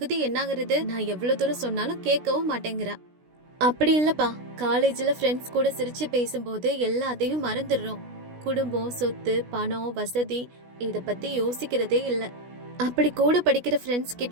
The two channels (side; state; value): left; late; 16 ms